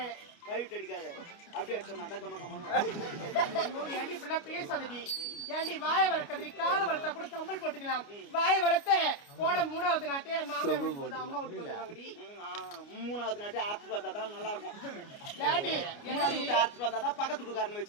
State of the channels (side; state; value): right; late; 29 ms